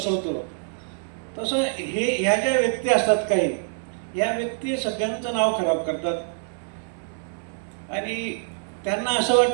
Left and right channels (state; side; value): silent; left; 61 dB below the other